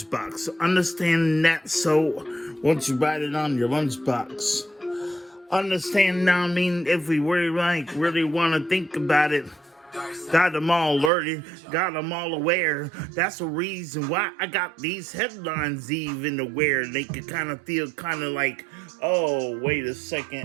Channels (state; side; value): drops out; left; at 11.1 s